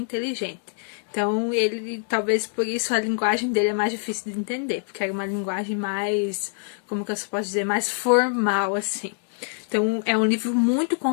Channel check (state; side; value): silent; right; 58 dB below the other